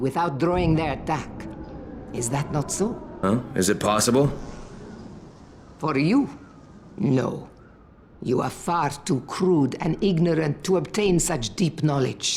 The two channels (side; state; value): both; identical; correlation 1.00